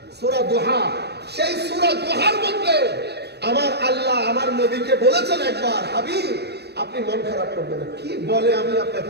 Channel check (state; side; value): late; left; 0.48 ms